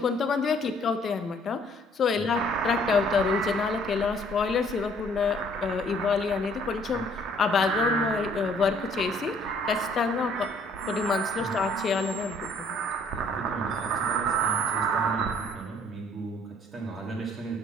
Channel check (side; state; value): both; normal; correlation 0.60